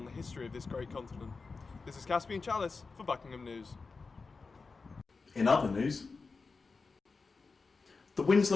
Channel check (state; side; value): quieter; right; 4.3 dB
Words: the history of this great continent. This is Caspian Chalice for Buckingham News. In other news, the